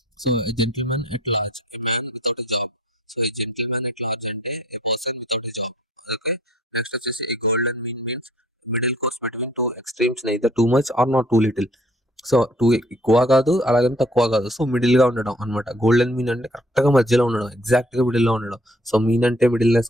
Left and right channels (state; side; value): normal; both; correlation 0.58